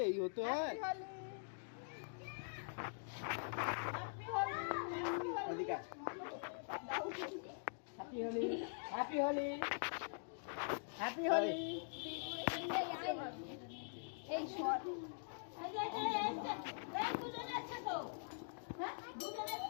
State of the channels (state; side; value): silent; right; digital silence